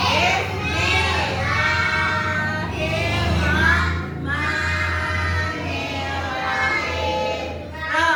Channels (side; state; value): both; identical; correlation 1.00